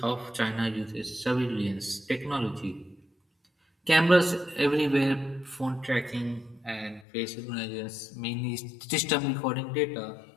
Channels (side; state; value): right; drops out; at 7.1 s